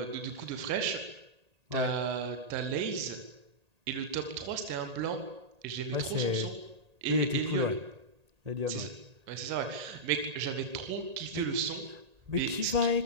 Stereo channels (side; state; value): left; late; 1.8 ms